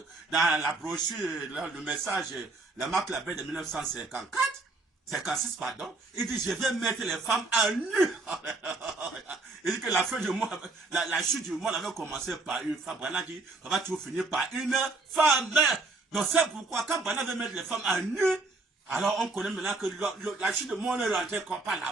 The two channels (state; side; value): quieter; left; 3.4 dB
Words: dans la brochure, le message, la marque la paix de 1954, 56, pardon. Il dit, je vais mettre les femmes à nu. Il dit que la fin du mois, la chute du monde avait commencé par une femme. Branham dit, ça va toujours finir par une femme. Donc c'est pourquoi, quand Branham veut mettre les femmes à nu, alors on connaît maintenant que la chute du monde est rentrée comme par la